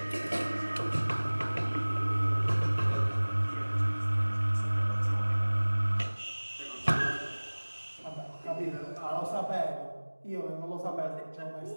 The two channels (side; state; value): both; inverted; correlation -1.00